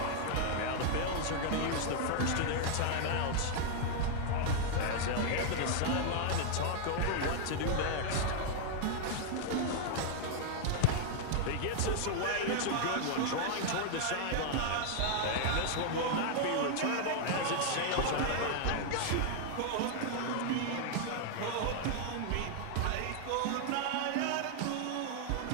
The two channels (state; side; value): different; both; correlation 0.00